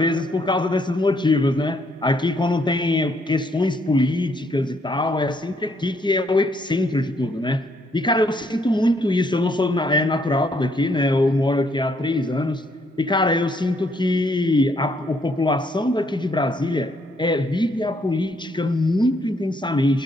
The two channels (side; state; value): both; normal; correlation 0.70